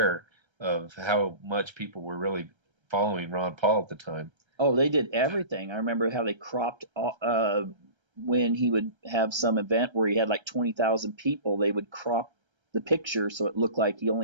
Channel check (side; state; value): left; late; 1.3 ms